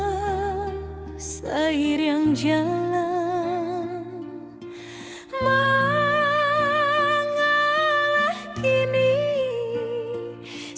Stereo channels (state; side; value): identical; both; correlation 1.00